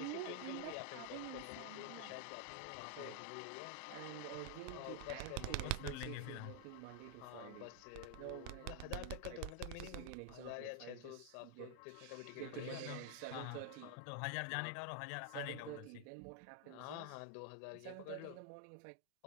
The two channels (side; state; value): both; different; correlation 0.00